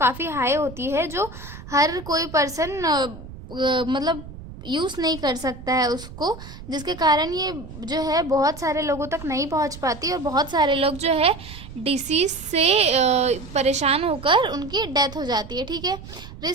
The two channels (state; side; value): noise; right; rumble, 14 dB below the sound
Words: हाई होती है, जो हर कोई पर्सन मतलब यूज़ नहीं कर सकता है उसको, जिसके कारण ये जो है बहुत सारे लोगों तक नहीं पहुंच पाती और बहुत सारे लोग जो है डिसीज़ से परेशान होकर उनकी डेथ हो जाती है, ठीक है।